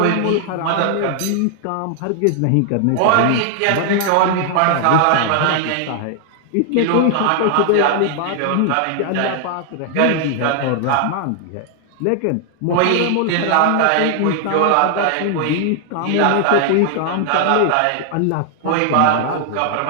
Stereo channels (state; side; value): different; both; correlation 0.00